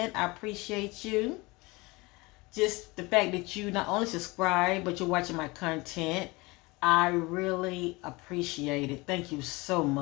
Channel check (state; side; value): quieter; right; 23.9 dB